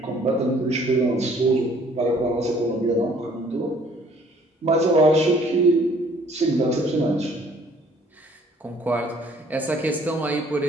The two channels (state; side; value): normal; both; correlation 0.58